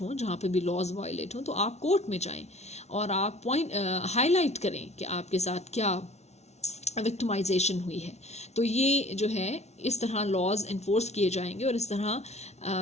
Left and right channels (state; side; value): late; right; 0.32 ms